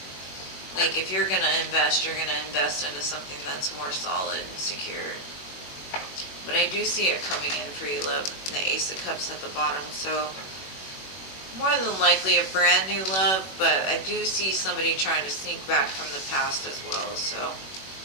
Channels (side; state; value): right; late; 21 ms